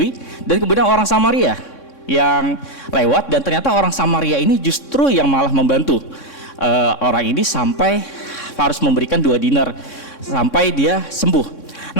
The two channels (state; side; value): late; right; 3.6 ms